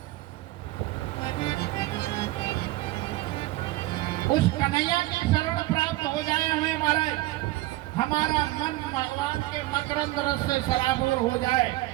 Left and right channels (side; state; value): left; quieter; 18.1 dB